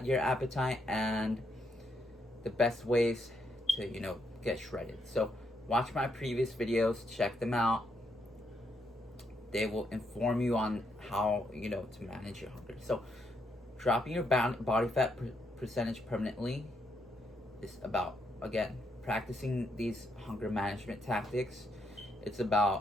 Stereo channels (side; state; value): both; normal; correlation 0.77